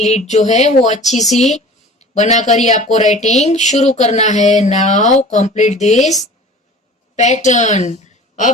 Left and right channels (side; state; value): both; normal; correlation 0.42